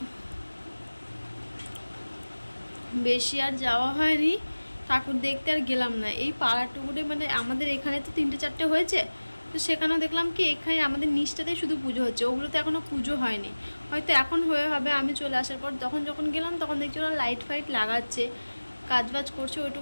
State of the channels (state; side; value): inverted; both; correlation -1.00